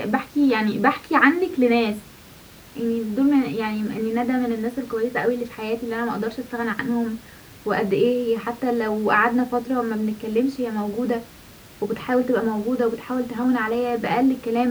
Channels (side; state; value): both; identical; correlation 1.00